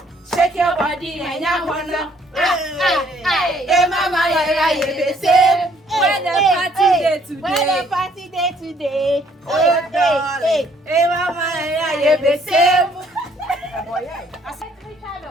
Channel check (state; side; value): normal; both; correlation 0.64